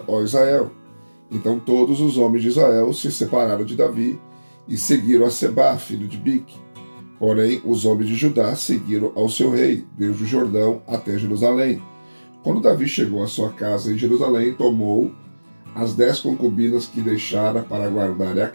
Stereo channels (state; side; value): inverted; both; correlation -1.00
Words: ó Israel. Então todos os homens de Israel se separaram de Davi e seguiram a Sebá, filho de Bique. Porém, os homens de Judá seguiram ao seu rei, desde o Jordão até Jerusalém. Quando Davi chegou à sua casa em Jerusalém, tomou as 10 concubinas que deixara para guardar a